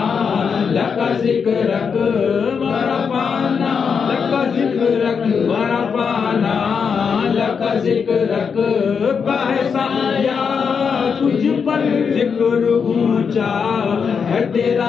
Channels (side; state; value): right; quieter; 6.2 dB